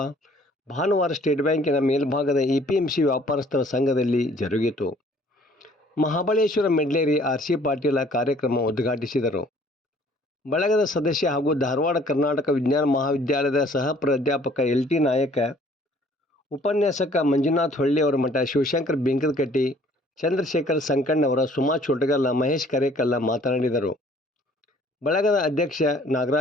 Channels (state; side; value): normal; both; correlation 0.57